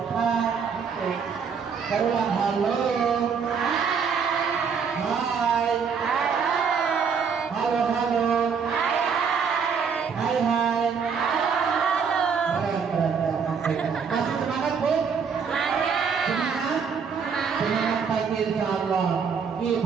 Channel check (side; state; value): left; quieter; 6.2 dB